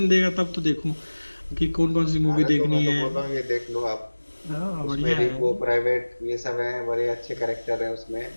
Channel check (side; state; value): both; inverted; correlation -1.00